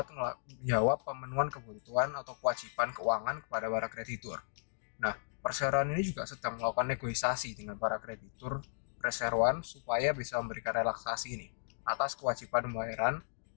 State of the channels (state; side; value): silent; right; digital silence